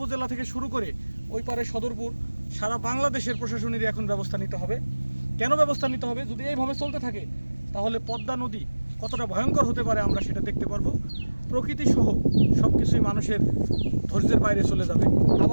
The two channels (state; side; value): inverted; both; correlation -1.00